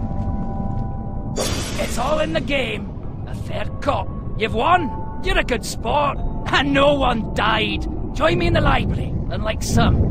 It's all in the game. A fair cop. You've won. You're a good sport. And no one died. Join me in the library. Unlike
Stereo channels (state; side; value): identical; both; correlation 1.00